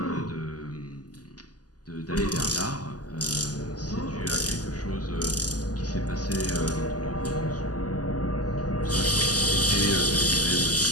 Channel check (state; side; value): late; right; 0.67 ms